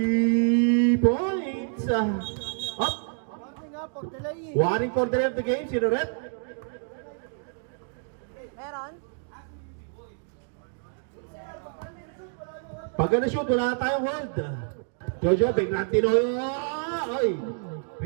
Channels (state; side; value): silent; left; 60 dB below the other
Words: points. Up. Warning for delay of the game. Sino rep? Meron? Pag na-shoot, wala na tayong hold. Jojo, biglang tinoyo. Oy.